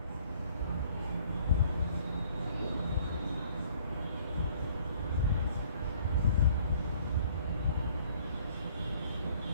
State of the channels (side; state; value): both; inverted; correlation -0.58